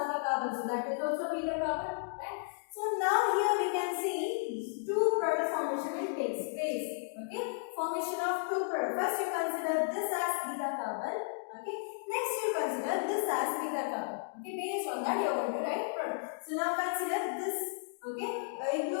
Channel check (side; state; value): right; silent; digital silence